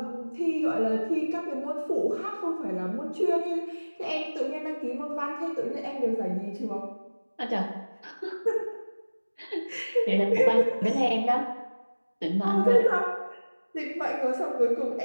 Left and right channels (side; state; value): both; inverted; correlation -1.00